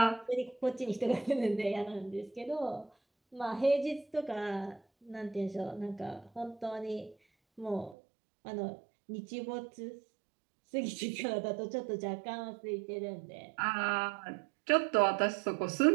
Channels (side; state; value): left; drops out; at 8.0 s